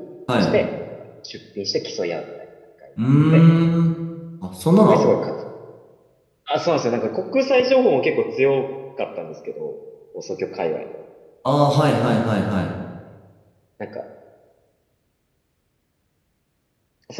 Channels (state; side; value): identical; both; correlation 1.00